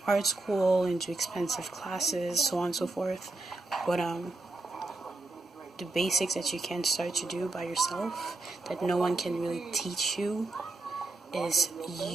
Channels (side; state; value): left; quieter; 3.1 dB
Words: art school and do expensive classes, so on and so forth. But the basics that you can start to do by yourself, that no one can really teach you, is